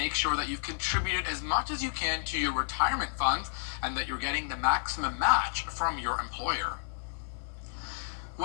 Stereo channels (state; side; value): silent; right; digital silence